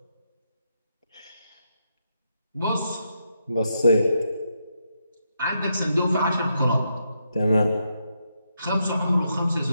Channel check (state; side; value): inverted; both; correlation -0.81